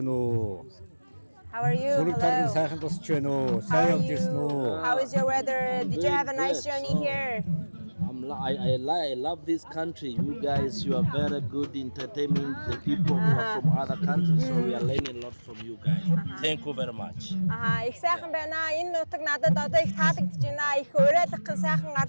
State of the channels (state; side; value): inverted; both; correlation -1.00